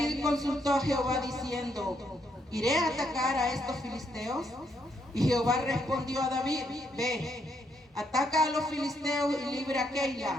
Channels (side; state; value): both; normal; correlation 0.75